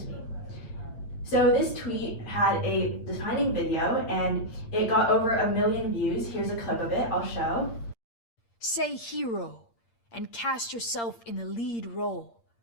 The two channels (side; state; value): right; late; 8.7 ms